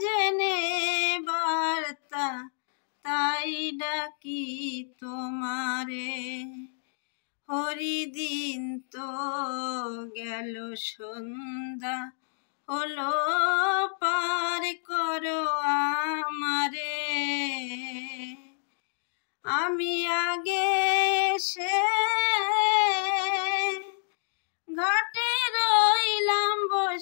জেনে বার্তা, তাই ডাকি তোমারে। হরিদিন তো গেল, সন্ধ্যা হলো, পার করো আমারে। আমি আগে এসে ঘাটে রইলাম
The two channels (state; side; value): silent; right; 59 dB below the other